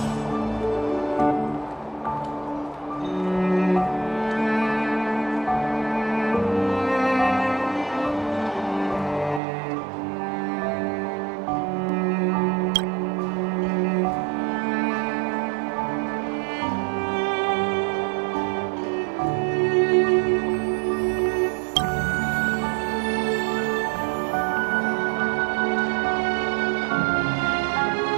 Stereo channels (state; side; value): drops out; left; at 9.4 s